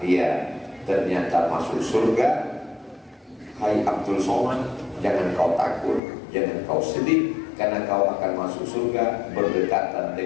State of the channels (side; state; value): right; drops out; at 6.0 s